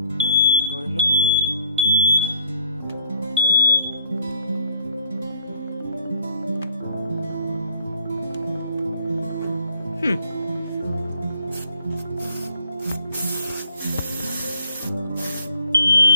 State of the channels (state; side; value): inverted; both; correlation -0.61